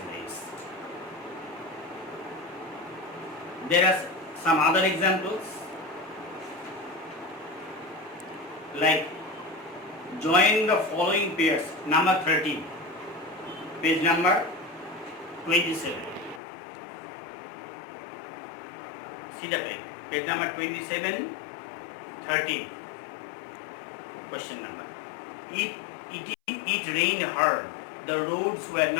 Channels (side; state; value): right; drops out; at 16.4 s